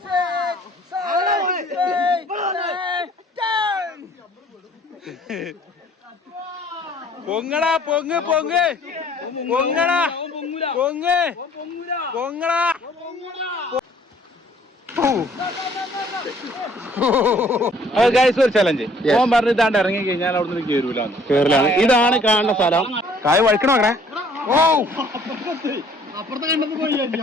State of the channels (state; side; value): normal; both; correlation 0.58